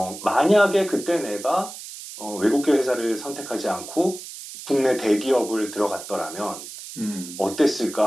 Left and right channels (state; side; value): noise; right; hiss, 12 dB below the sound